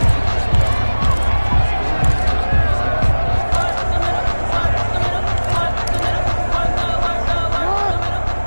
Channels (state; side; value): inverted; both; correlation -1.00